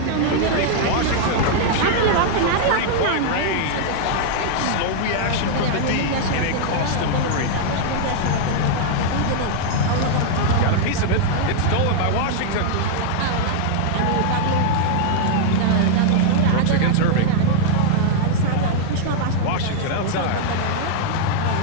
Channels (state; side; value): different; both; correlation -0.01